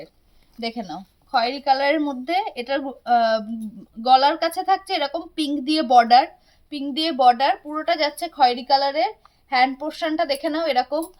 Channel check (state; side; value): identical; both; correlation 1.00